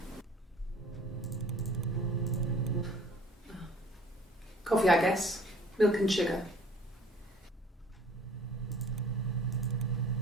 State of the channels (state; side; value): normal; both; correlation 0.52